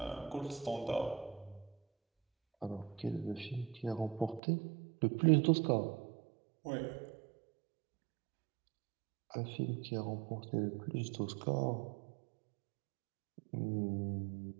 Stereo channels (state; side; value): drops out; left; at 4.4 s